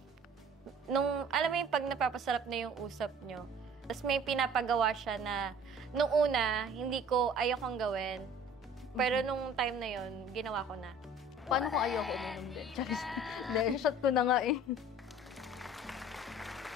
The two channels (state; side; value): normal; both; correlation 0.49